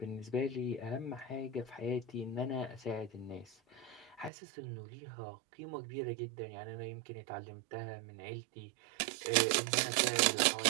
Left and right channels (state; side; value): drops out; left; at 4.3 s